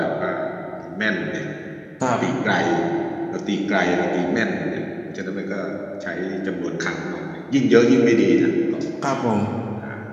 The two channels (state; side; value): identical; both; correlation 1.00